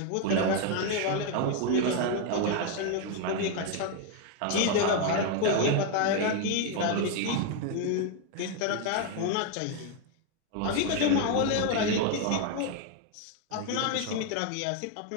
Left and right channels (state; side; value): different; both; correlation 0.01